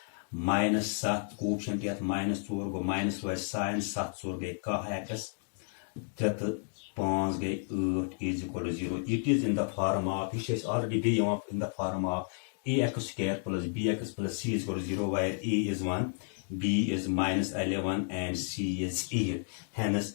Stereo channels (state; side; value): silent; right; 55 dB below the other